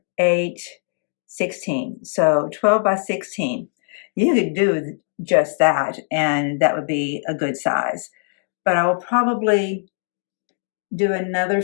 8, 16. So 12 by 16. You could do just that, and that would be a good size. But I will probably do another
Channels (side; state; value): right; silent; digital silence